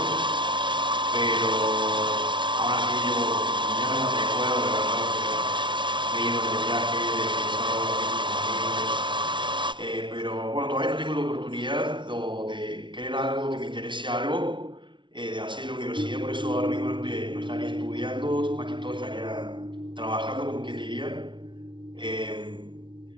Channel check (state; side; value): late; left; 0.24 ms